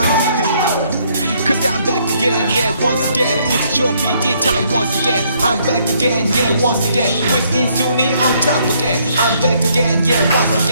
Cause I'm back again, yeah, once again. It's your PD time once again. I'm back again, yeah, once again. With 인순이 on top again. I'm back again, yeah, once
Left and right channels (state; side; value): inverted; both; correlation -0.68